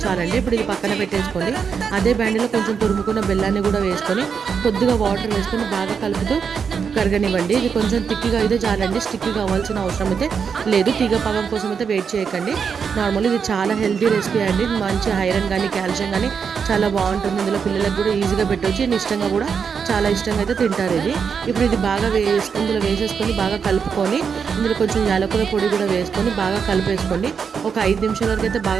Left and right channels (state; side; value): quieter; left; 6.4 dB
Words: చాలండి. ఇప్పుడు ఇది పక్కన పెట్టేసుకోండి. అదే బ్యాండ్లో కొంచెం తురుముకున్న బెల్లాన్ని కూడా వేసుకొని కొద్దిగా వాటర్ వేసుకొని బాగా కలుపుతూ కరగనివ్వండి. ఇది కొంచెం తిక్కిగా అయితే చాలండి, స్టిక్కి కావాల్సిన అవసరం అయితే లేదు. తీగ పాకం కోసం అయితే వెయిట్ చేయకండి. నార్మల్ ఇది చాలా హెల్తీ రెసిపీ అండి. మంచి ఐరన్ కానీ కాల్షియం కానీ చాలా బాగుంటుంది. ఇందులో పిల్లలకు కూడా ఈజీగా పెట్టవచ్చు. ఇష్టంగా కూడా చాలా ఇష్టంగా అయితే తింటారు ఇది. ఇప్పుడు ఇది బాగా ఇందులో వేసేసుకొని బాగా కలుపుకొని ఇందులో కొంచెం యాలకుల పొడి కూడా వేసుకొని బాగా కలిపేసుకోండి. ఒక 5 నిమిషాల వరకు అయితే